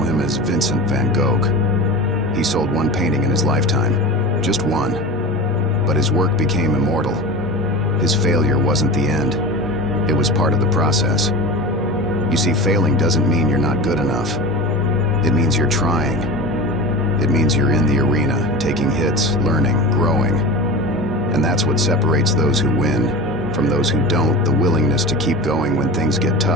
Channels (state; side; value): normal; both; correlation 0.31